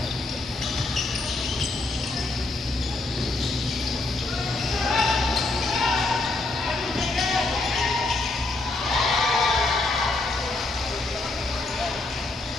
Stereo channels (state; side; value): quieter; right; 3.1 dB